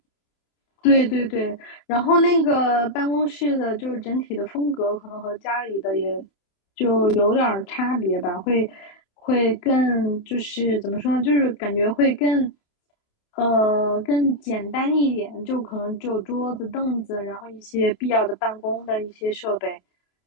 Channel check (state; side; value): late; right; 28 ms